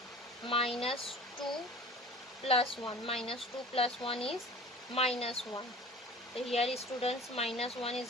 Minus 2 plus 1, minus 2 plus 1 is minus 1. So here students, minus 1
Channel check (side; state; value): both; normal; correlation 0.41